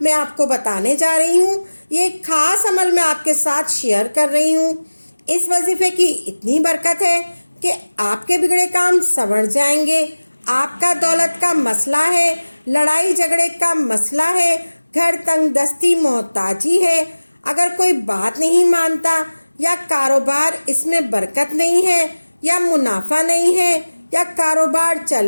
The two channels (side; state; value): both; inverted; correlation -1.00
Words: میں آپ کو بتانے جا رہی ہوں۔ یہ ایک خاص عمل میں آپ کے ساتھ شیئر کر رہی ہوں۔ اس وظیفے کی اتنی برکت ہے کہ آپ کے بگڑے کام سنور جائیں گے۔ آپ کا دولت کا مسئلہ ہے، لڑائی جھگڑے کا مسئلہ ہے، گھر تنگ دستی محتاجی ہے، اگر کوئی بات نہیں مانتا یا کاروبار اس میں برکت نہیں ہے یا منافع نہیں ہے یا کاروبار چل